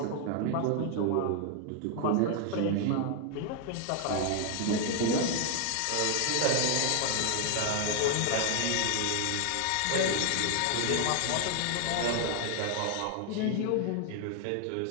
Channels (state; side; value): different; both; correlation 0.00